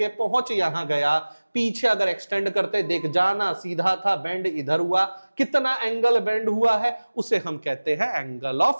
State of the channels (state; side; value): inverted; both; correlation -1.00